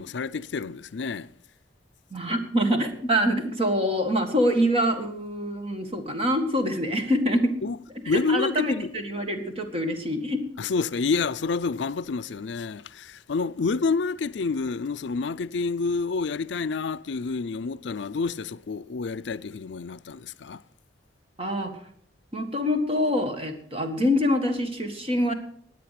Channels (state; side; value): normal; both; correlation 0.44